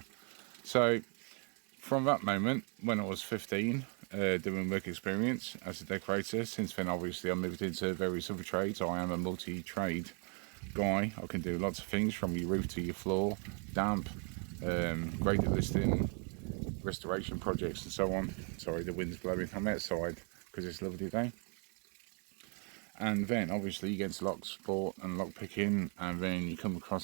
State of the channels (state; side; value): quieter; left; 38.3 dB